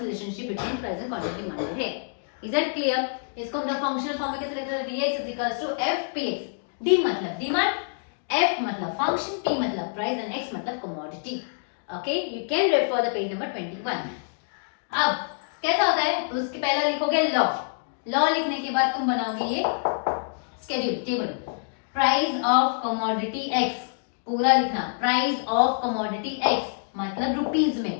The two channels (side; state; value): right; silent; digital silence